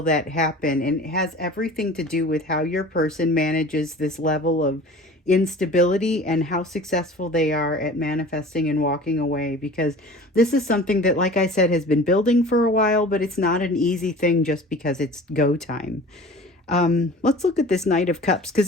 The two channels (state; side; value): normal; both; correlation 0.42